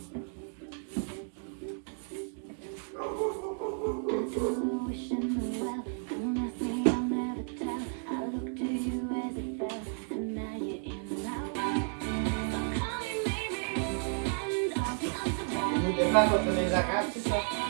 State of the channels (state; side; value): silent; left; 56 dB below the other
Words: Nous défendre contre les arabes, c'est ça?